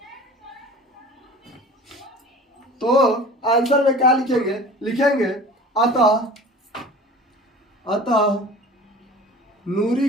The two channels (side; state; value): both; normal; correlation 0.40